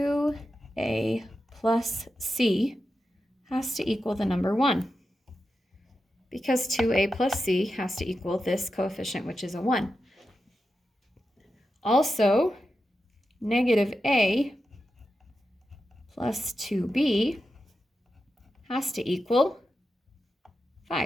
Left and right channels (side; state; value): both; normal; correlation 0.90